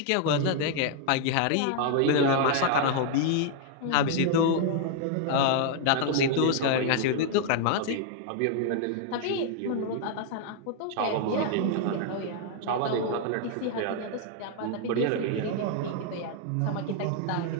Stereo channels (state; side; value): different; both; correlation 0.00